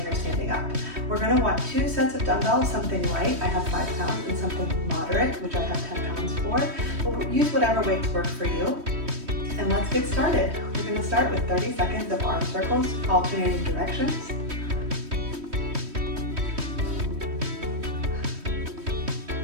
or standing up. We're going to want 2 sets of dumbbells, something light, I have 5 pounds, and something moderate, which I have 10 pounds for. We'll use whatever weights work for you. And let's get started. We're going to start with 30 seconds of arm circles, alternating directions.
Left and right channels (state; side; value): late; left; 3.1 ms